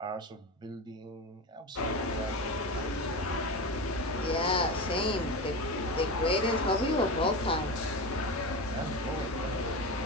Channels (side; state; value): both; normal; correlation 0.23